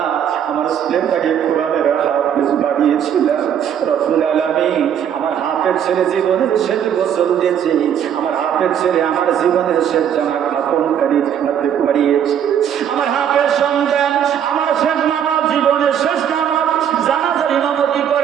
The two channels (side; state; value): left; quieter; 9.0 dB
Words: আমার ছেলেটাকে কোরআনের হাফেজ বানিয়েছিলাম। রব্বুল আলামিন আমার হাফেজ ছেলে জীবনের শেষ গোসল দিয়েছে, আমার হাফেজ ছেলে আমার জীবনের শেষ জামা কাপড়কারী হাতে পরিয়েছে, আমার হাফেজ সন্তান আমার শেষ নামাজ, জীবনের শেষ নামাজ জানাজার ইমামতি